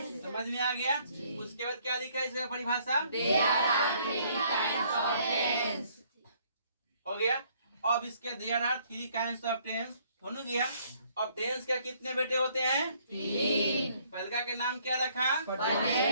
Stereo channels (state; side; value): inverted; both; correlation -0.64